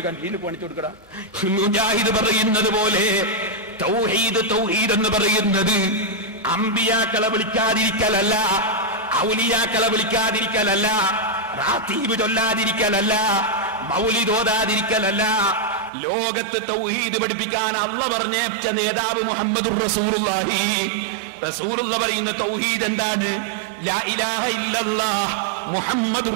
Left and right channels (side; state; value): left; drops out; at 15.9 s